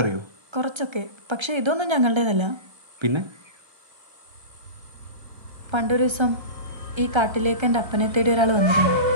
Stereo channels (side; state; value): left; late; 1.3 ms